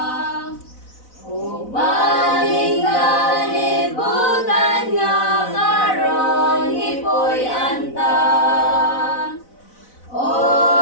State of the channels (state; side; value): late; right; 4.0 ms